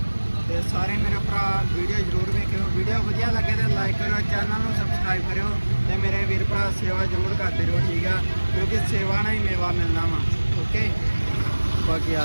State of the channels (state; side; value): inverted; both; correlation -1.00